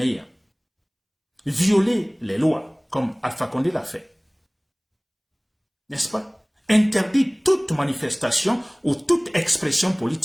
Violer les lois, comme Alpha Condé l'a fait. N'est-ce pas? Interdit toute manifestation ou toute expression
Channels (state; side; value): identical; both; correlation 1.00